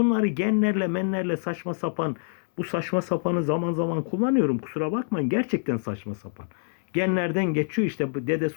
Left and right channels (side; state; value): right; silent; 61 dB below the other